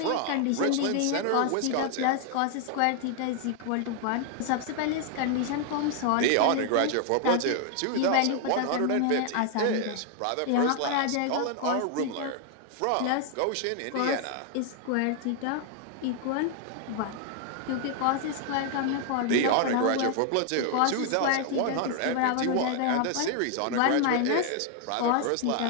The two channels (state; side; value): different; both; correlation 0.00